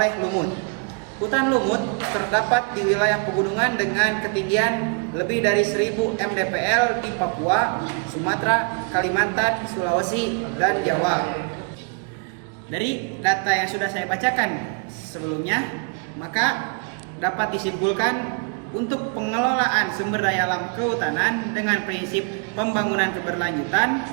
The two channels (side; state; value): left; quieter; 34.7 dB